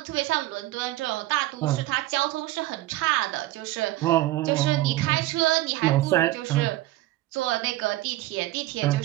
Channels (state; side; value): quieter; left; 17.1 dB